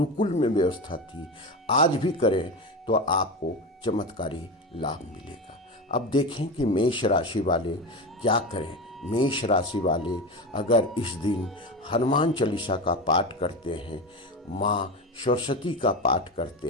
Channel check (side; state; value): both; normal; correlation 0.22